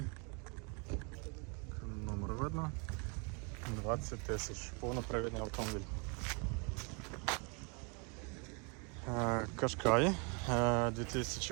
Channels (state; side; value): quieter; left; 34.4 dB